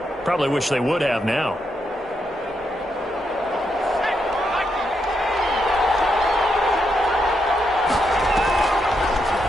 Probably wish they would have now.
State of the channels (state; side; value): normal; both; correlation 0.81